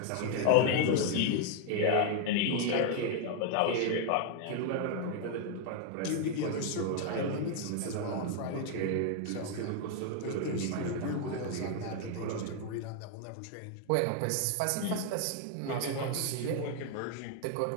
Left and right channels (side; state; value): both; different; correlation 0.00